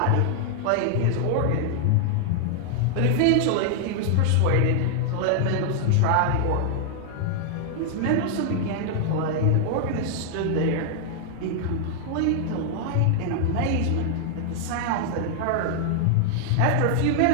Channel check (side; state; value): both; different; correlation -0.01